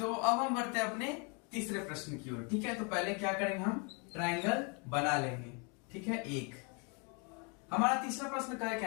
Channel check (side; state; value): right; quieter; 34.5 dB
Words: अब हम बढ़ते हैं अपने तीसरे प्रश्न की ओर, ठीक है। तो पहले क्या करेंगे, हम ट्रायंगल बना लेंगे, ठीक है। एक हमारा तीसरा प्रश्न क्या